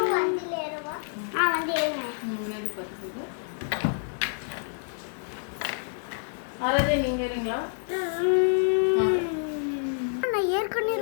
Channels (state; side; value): silent; right; 59 dB below the other